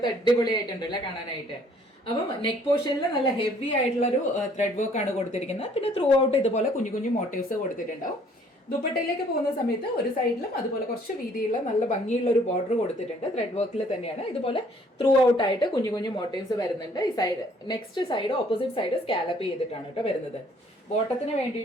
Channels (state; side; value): normal; both; correlation 0.60